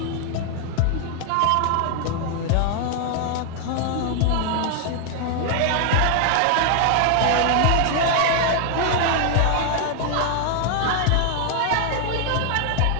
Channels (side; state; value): both; different; correlation 0.00